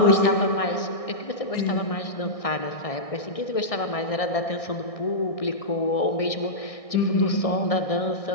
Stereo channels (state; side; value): late; right; 1.6 ms